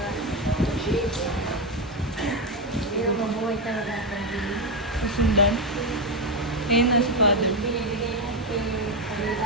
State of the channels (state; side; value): normal; both; correlation 0.08